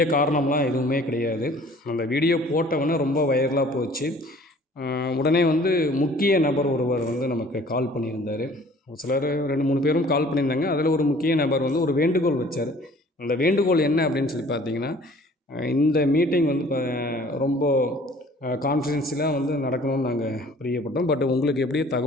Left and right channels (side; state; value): both; normal; correlation 0.52